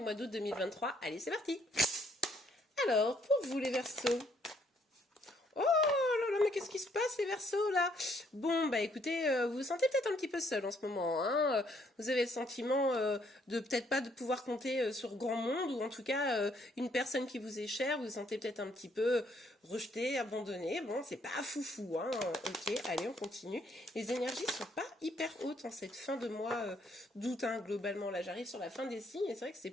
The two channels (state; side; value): normal; both; correlation 0.68